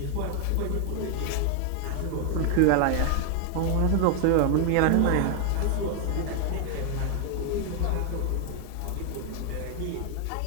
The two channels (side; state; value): both; different; correlation 0.00